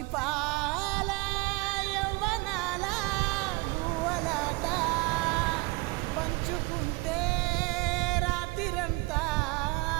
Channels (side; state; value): left; quieter; 25.1 dB